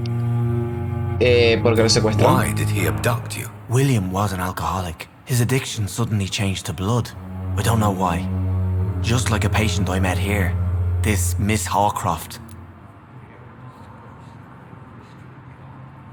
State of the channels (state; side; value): identical; both; correlation 1.00